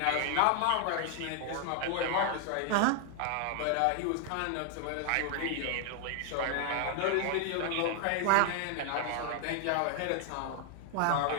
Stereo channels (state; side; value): different; both; correlation 0.00